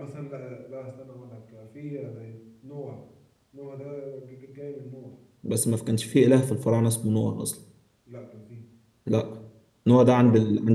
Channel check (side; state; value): both; identical; correlation 1.00